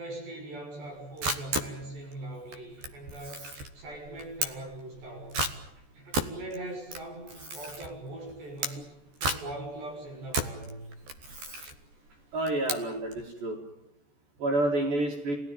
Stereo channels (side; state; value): left; late; 14 ms